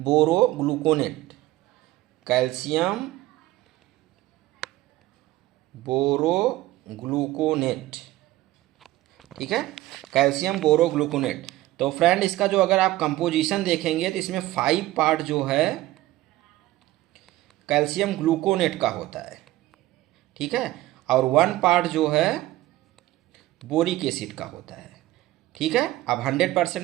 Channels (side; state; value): left; quieter; 16.8 dB